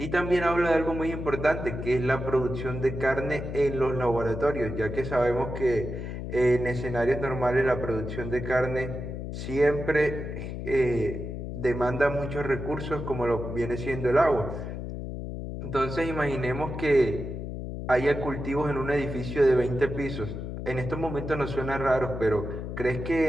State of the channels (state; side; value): noise; left; hum, 6 dB below the sound